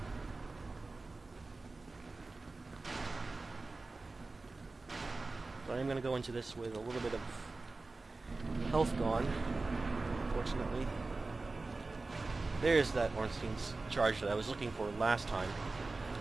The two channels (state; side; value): quieter; left; 3.5 dB